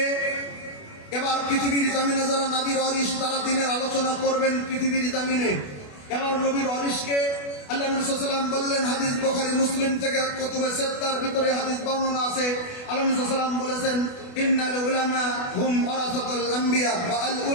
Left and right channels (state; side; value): late; right; 28 ms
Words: এবার পৃথিবীর জমিনে যারা নবীর ওয়ারিস, তারা দিনের আলোচনা করবেন পৃথিবীর জমিনে। এবার নবীর ওয়ারিসকে আল্লাহ নবী সাল্লাল্লাহু আলাইহি ওয়াসাল্লাম বললেন, হাদিস বুখারী মুসলিম থেকে কুতুবে সিত্তার ভিতরে হাদিস বর্ণনা আছে। আল্লাহ নবী সাল্লাল্লাহু আলাইহি ওয়াসাল্লাম বলেছেন, ইন্নাল উলামা হুম ওয়ারাসাতুল আম্বিয়া ওয়া আল